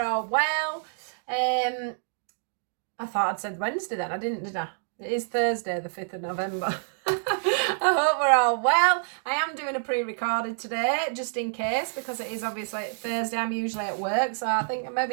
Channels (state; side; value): silent; left; digital silence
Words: all well. I thought I'd said Wednesday then. I didn't, did I? It is Thursday, the 5th of November. I hope we're all well. I am doing a pre-recorded today, just in case, because it is obviously Thursday. I'm usually at work, so I think